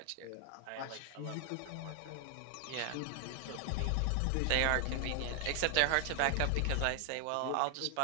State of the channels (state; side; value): different; both; correlation 0.00